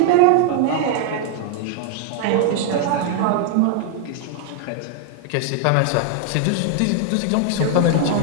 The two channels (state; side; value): different; both; correlation 0.00